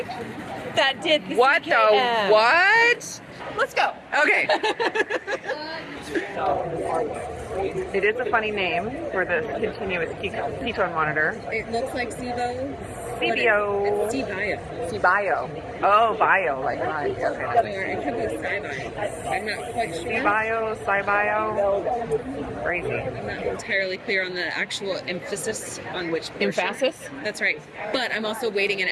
that did the What CKM. the what? Let's go. Okay. It is a funny name for this continuous ketone monitor. It looks like SIBO. CBO. It's C-Bio. C-Bio. Oh, bio, like mine. Okay. Or it could be SciBio. I'm not quite sure. C-Bio, Sci-Bio. Crazy. I'm not entirely clear on the actual emphasis on which portion. Emphasis? That's right. But I'm also waiting an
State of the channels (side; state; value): both; identical; correlation 1.00